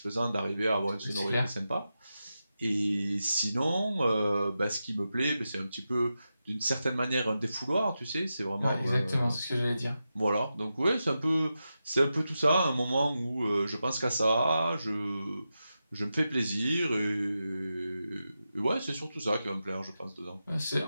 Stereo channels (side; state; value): both; inverted; correlation -0.90